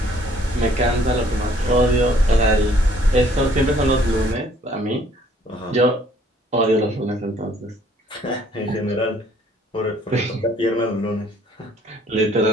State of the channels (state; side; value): normal; both; correlation 0.61